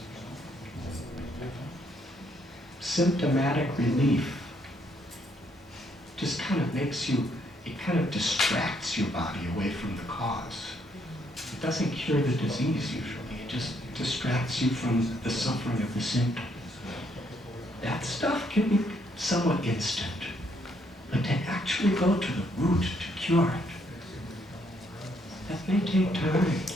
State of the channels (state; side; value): normal; both; correlation 0.71